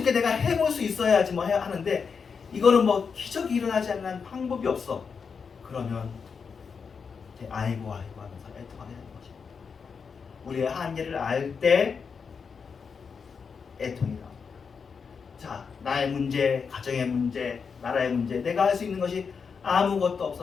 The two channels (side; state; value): right; quieter; 5.8 dB